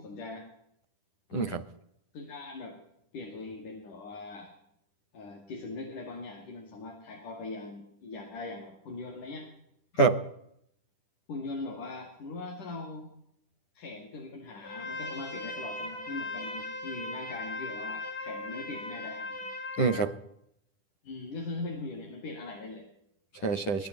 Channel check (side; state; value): right; late; 10 ms